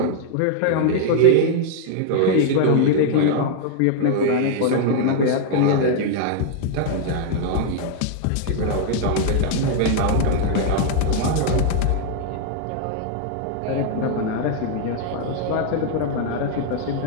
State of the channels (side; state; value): both; different; correlation 0.00